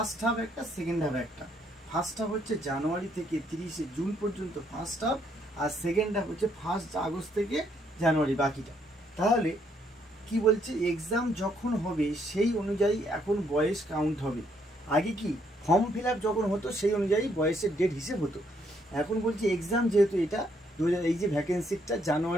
হাফ একটা, সেকেন্ড হাফ একটা। ফার্স্ট হাফ হচ্ছে জানুয়ারি থেকে 30 জুন পর্যন্ত ফার্স্ট হাফ, আর সেকেন্ড হাফ হচ্ছে 1 আগস্ট থেকে জানুয়ারি বাকিটা। তাহলে কি বলছে, এক্সাম যখন হবে সেই অনুযায়ী এখন বয়স কাউন্ট হবে। আগে কি ফর্ম ফিল আপ যখন হতো সেই অনুযায়ী বয়সের ডেট হিসেব হতো, এখন বলছি এক্সাম যেহেতু এটা এই যে ভ্যাকেন্সিটা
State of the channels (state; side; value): normal; both; correlation 0.71